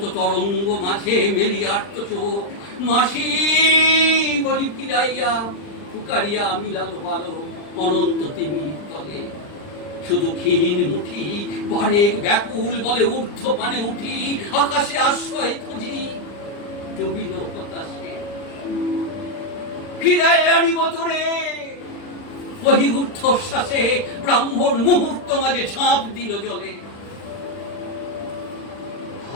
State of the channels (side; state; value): right; late; 40 ms